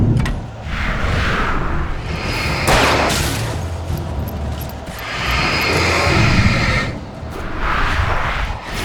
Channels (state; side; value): identical; both; correlation 1.00